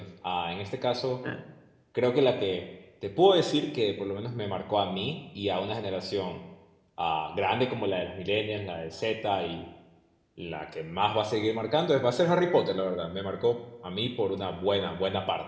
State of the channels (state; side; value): identical; both; correlation 1.00